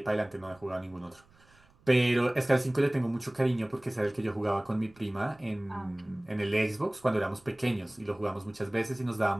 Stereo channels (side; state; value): right; noise; rumble, 30 dB below the sound